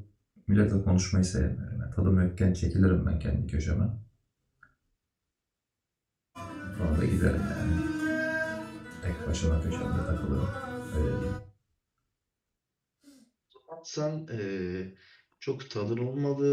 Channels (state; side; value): identical; both; correlation 1.00